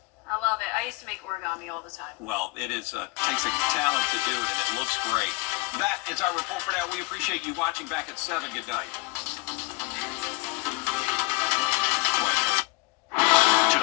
I love it. I used to make origami all the time. Well, it is takes a talent to do it, and it looks great. That is our report for now. We appreciate you watching. Back at 7. Good night.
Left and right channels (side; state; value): right; quieter; 24.8 dB